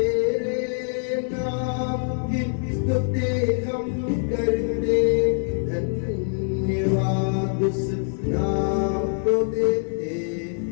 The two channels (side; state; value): right; silent; 62 dB below the other